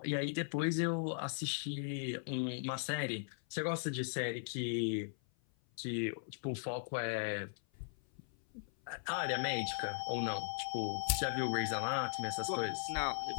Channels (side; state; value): right; silent; 52 dB below the other